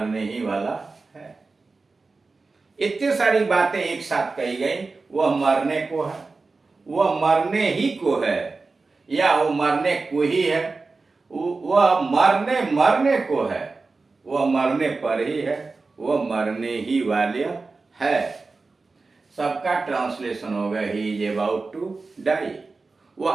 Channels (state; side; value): quieter; left; 3.9 dB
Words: ही वाला है। इतनी सारी बातें एक साथ कही गई। वह मरने को है, वह मरने ही को है, या वो मरने को ही है, वह मरने को है, वह मरने पर ही है, वह मरने ही वाले है। सबका ट्रांसलेशन होगा he is about to die. वो